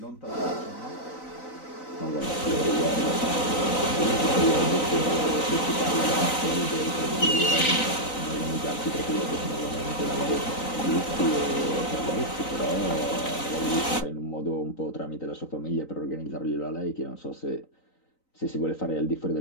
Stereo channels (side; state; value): right; late; 3.9 ms